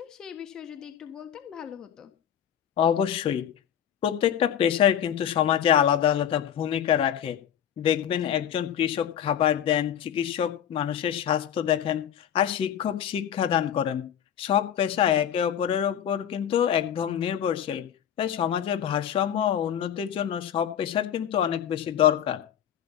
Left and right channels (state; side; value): quieter; right; 9.5 dB